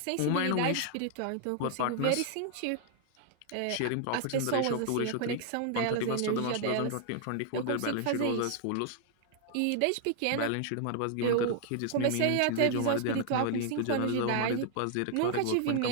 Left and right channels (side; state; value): both; different; correlation 0.00